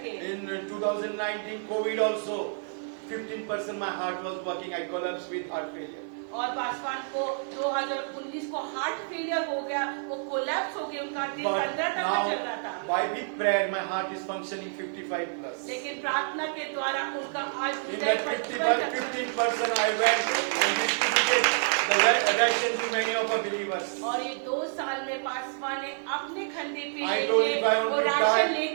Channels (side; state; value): left; silent; digital silence